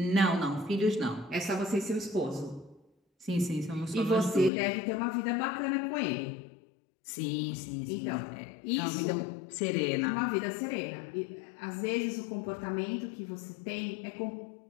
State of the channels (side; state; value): right; drops out; at 4.5 s